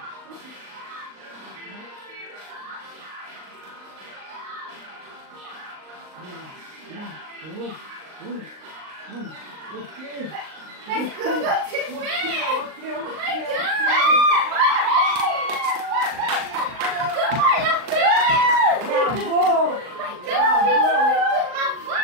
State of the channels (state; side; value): late; left; 38 ms